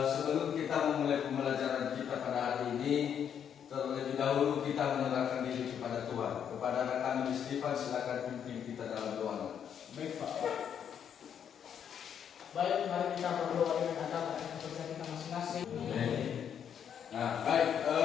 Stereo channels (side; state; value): right; quieter; 8.4 dB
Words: Sebelum kita memulai pembelajaran kita pada hari ini, terlebih dahulu kita menyerahkan diri kepada Tuhan. Kepada anak kami Stefan, silakan pimpin kita dalam doa. Baik, Pak. Baik, mari kita berdoa dengan agama dan kepercayaan kita masing-masing. Nah, baik.